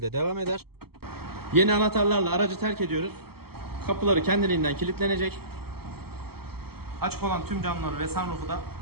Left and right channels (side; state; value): left; late; 0.96 ms